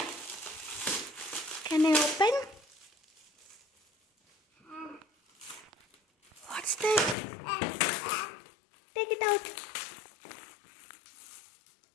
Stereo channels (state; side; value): drops out; right; at 7.2 s